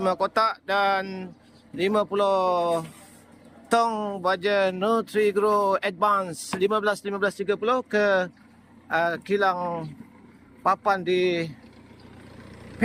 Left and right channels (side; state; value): both; identical; correlation 1.00